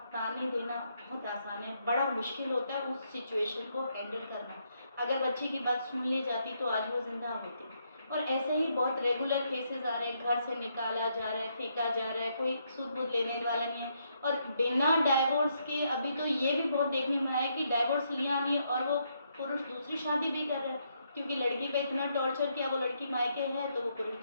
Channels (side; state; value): both; inverted; correlation -0.76